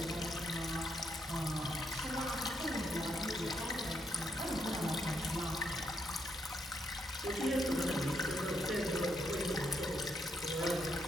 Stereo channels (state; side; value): normal; both; correlation 0.77